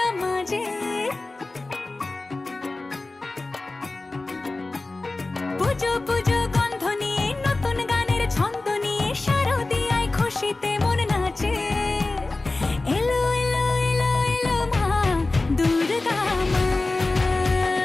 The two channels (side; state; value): right; quieter; 3.2 dB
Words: মাঝে। পুজো পুজো গন্ধ নিয়ে নতুন গানের ছন্দ নিয়ে শারদিয়ায় খুশিতে মন নাচে। এলো এলো এলো এলো মা দুর্গা মা,